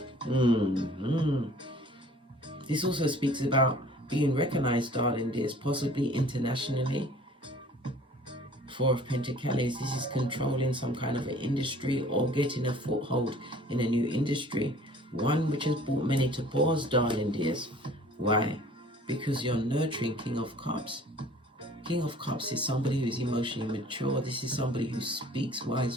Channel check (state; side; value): normal; both; correlation 0.50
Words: This also speaks about being recognized, darling dears, possibly internationally. Four of Pentacles, this is controlling some kind of an industry or getting a foothold in a new industry. One which has brought many to pause, darling dears. Why? Because you're nurturing King of Cups. King of Cups is somebody who is emotionally mature. This is somebody who speaks